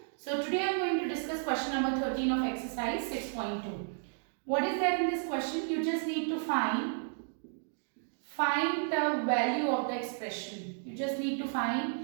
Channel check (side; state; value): left; silent; 56 dB below the other